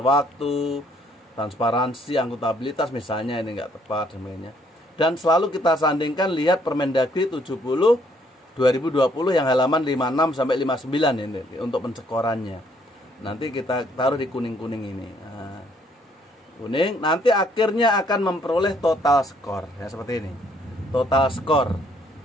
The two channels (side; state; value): both; normal; correlation 0.66